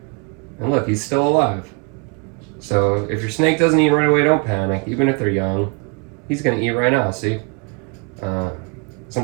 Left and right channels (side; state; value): left; quieter; 33.6 dB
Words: And look, he's still alive. So if your snake doesn't eat right away, don't panic. Even if they're young, he's gonna eat right now, see?